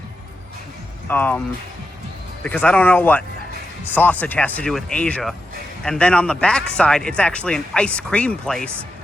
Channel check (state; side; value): normal; both; correlation 0.88